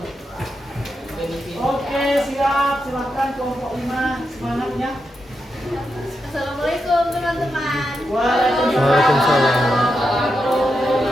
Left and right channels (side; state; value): both; normal; correlation 0.86